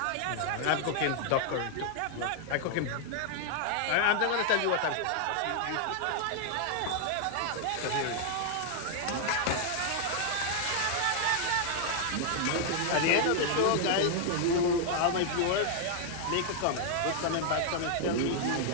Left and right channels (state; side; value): different; both; correlation 0.00